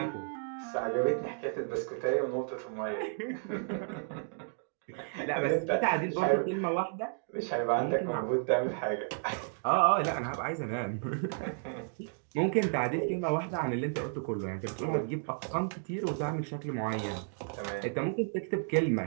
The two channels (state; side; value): silent; left; digital silence